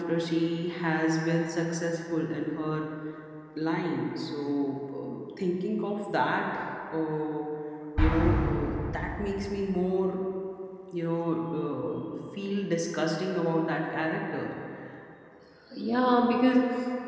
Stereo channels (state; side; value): identical; both; correlation 1.00